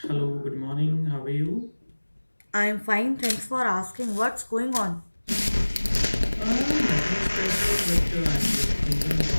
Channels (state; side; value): inverted; both; correlation -1.00